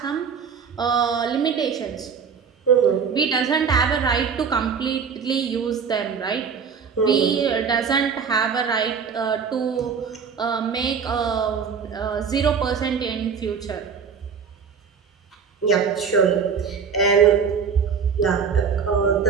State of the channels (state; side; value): quieter; left; 6.3 dB